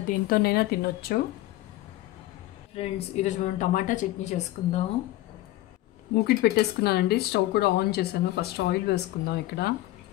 దేనితోనైనా తినొచ్చు. ఫ్రెండ్స్, ఈరోజు మనం టమాటా చట్నీ చేసుకుందాం. మూకిట్ పెట్టేసుకున్నానండి, స్టవ్ కూడా ఆన్ చేశాను. ఫస్ట్ ఆయిల్ వేసుకుందాం. ఇక్కడ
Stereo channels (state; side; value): quieter; right; 16.0 dB